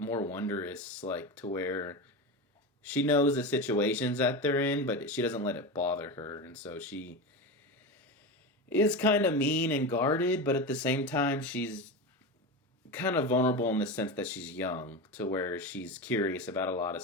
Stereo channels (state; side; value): normal; both; correlation 0.21